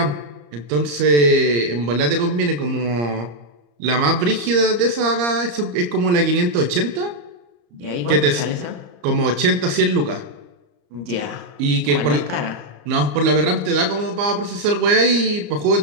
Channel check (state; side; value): late; left; 34 ms